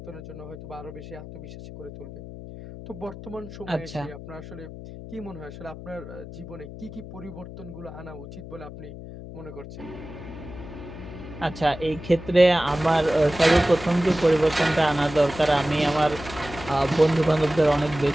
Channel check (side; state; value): left; noise; hum, 13 dB below the sound